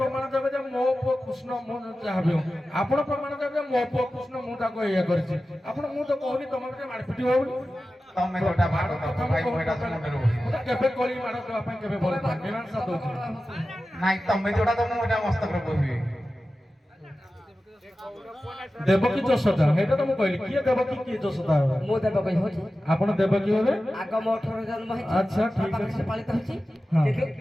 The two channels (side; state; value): both; normal; correlation 0.94